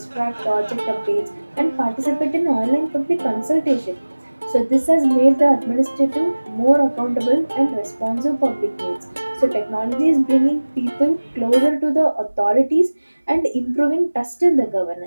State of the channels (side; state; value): both; inverted; correlation -1.00